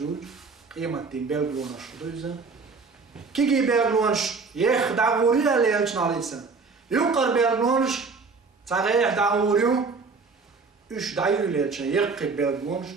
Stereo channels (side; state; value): left; quieter; 4.5 dB